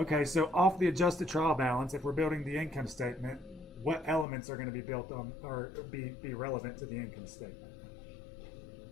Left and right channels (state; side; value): drops out; right; at 4.2 s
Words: so off the adjusted trial balance, if we're building the income statement, what elements are going to be built on or be relevant to the income statement?